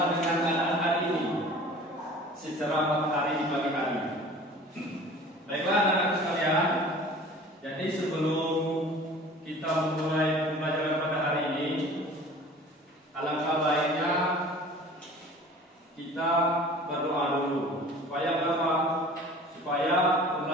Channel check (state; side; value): normal; both; correlation 0.44